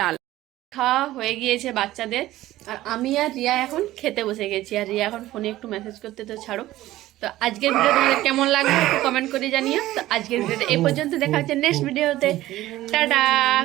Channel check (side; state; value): left; quieter; 15.6 dB